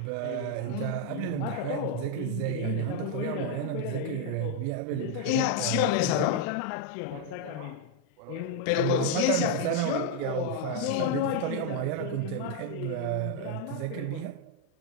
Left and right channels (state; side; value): different; both; correlation 0.01